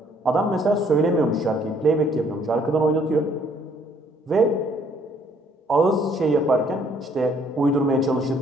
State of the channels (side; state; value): both; normal; correlation 0.63